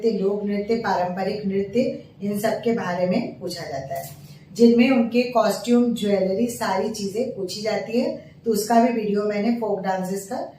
लोक नृत्य, पारंपरिक नृत्य, इन सब के बारे में पूछा जाता है, जिनमें उनके कॉस्ट्यूम, ज्वेलरी, सारी चीजें पूछी जाती है। तो उसका भी वीडियो मैंने फोक डांसेस का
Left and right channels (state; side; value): identical; both; correlation 1.00